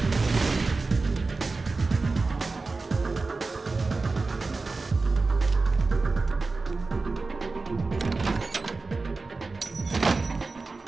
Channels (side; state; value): left; quieter; 3.8 dB